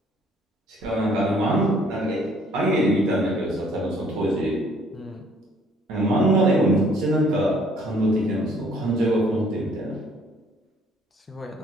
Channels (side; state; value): both; normal; correlation 0.60